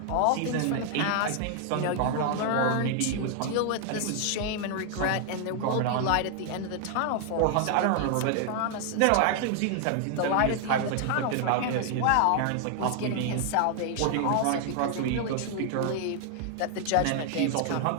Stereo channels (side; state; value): both; different; correlation 0.00